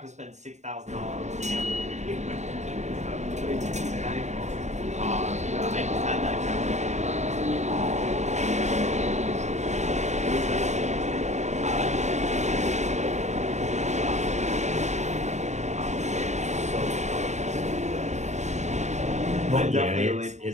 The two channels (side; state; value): left; late; 0.34 ms